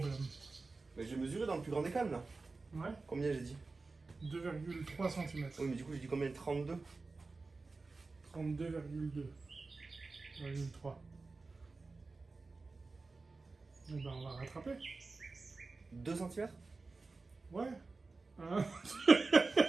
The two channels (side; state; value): left; quieter; 3.8 dB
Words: Mais j'ai mesuré dans le plus grand des calmes là. Ouais. Combien j'ai dit? 2,3 cm. Oui, mais du coup, j'ai dit combien? 32. 32,2,3. Eh ben, on va rattraper. 2 cm? Ouais. Hein.